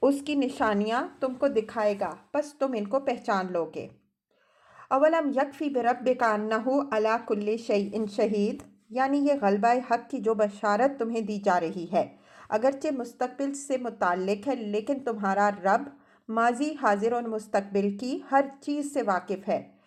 اس کی نشانیاں تم کو دکھائے گا، پس تم ان کو پہچان لو گے۔ اولم یکفی بربک انہ علی کل شیء شہید، یعنی یہ غلبہ حق کی جو بشارت تمہیں دی جا رہی ہے اگرچہ مستقبل سے متعلق ہے، لیکن تمہارا رب ماضی، حاضر اور مستقبل کی ہر چیز سے واقف ہے،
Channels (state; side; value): identical; both; correlation 1.00